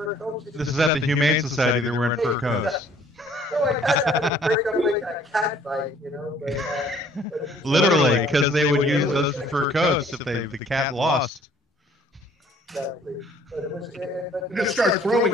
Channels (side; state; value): both; normal; correlation 0.58